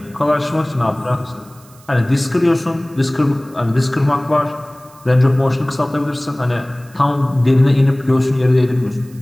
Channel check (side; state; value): right; noise; hiss, 26 dB below the sound